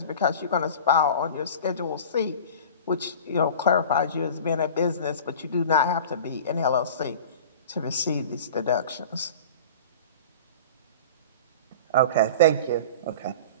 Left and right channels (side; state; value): both; inverted; correlation -0.38